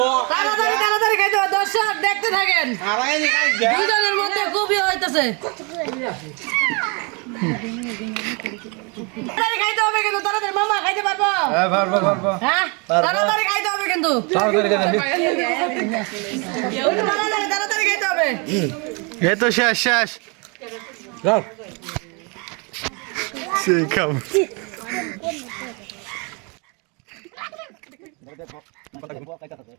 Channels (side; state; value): left; quieter; 32.1 dB